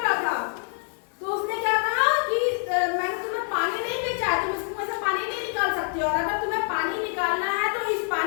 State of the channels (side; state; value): right; silent; 57 dB below the other